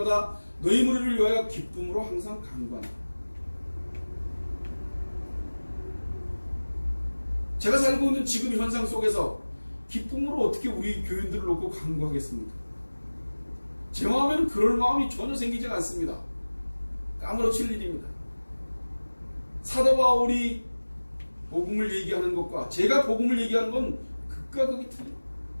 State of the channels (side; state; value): both; inverted; correlation -1.00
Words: 너희 무리를 위하여 기쁨으로 항상 간구한다. 제가 살고 있는 지금 현상 속에서 기쁨으로 어떻게 우리 교인들을 놓고 간구하겠습니까? 제 마음에는 그럴 마음이 전혀 생기지 않습니다. 까무러칠 일입니다. 사도 바울이 복음을 얘기하는 것과 제가 복음을 얘기하는 건 극과 극이 틀려요.